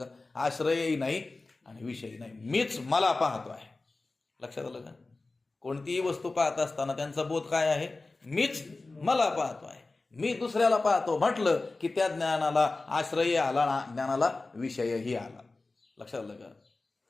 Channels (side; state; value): right; quieter; 3.4 dB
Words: आश्रयही नाही आणि विषयही नाही, मीच मला पाहतो आहे. लक्षात आलं का? कोणतीही वस्तू पाहत असताना त्यांचा बोध काय आहे? मीच मला पाहतो आहे. मी दुसऱ्याला पाहतो म्हटलं की त्या ज्ञानाला आश्रयही आला, ज्ञानाला विषयही आला. लक्षात आलं का?